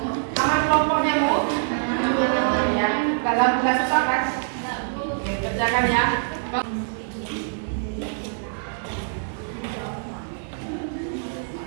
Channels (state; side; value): silent; left; digital silence